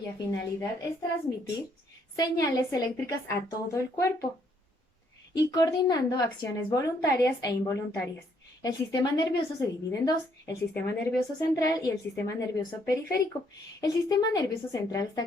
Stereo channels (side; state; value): both; normal; correlation 0.69